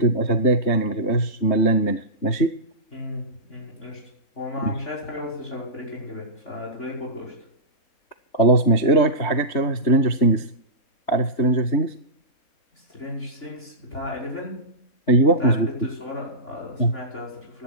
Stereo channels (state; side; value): late; right; 3.3 ms